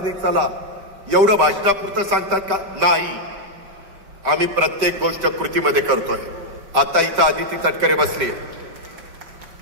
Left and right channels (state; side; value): late; left; 5.2 ms